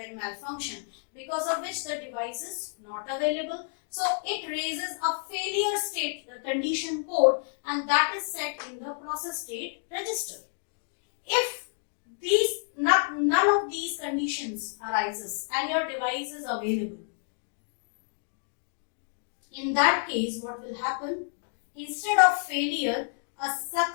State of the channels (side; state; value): right; silent; 58 dB below the other